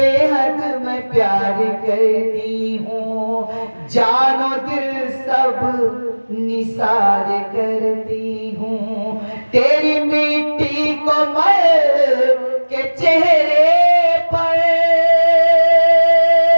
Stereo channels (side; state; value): both; inverted; correlation -1.00